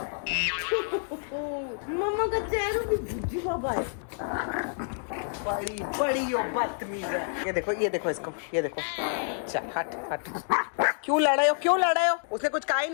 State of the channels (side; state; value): right; silent; digital silence